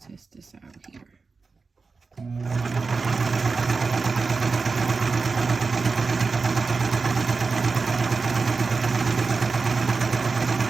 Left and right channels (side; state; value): left; quieter; 4.4 dB